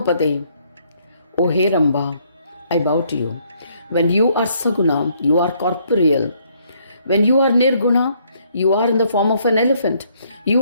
O Heramba, I bow to you. When you are Saguna, you are corporeal. When you are Nirguna, you are in the form of an elephant.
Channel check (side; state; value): both; inverted; correlation -0.68